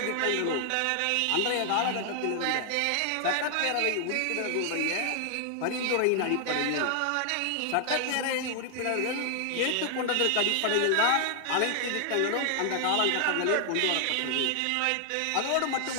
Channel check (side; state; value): both; different; correlation 0.00